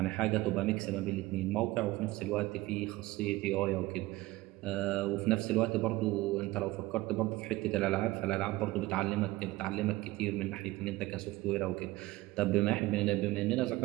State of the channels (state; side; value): quieter; left; 19.0 dB